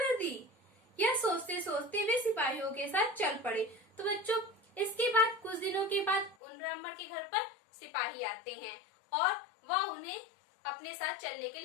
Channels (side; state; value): right; drops out; at 6.4 s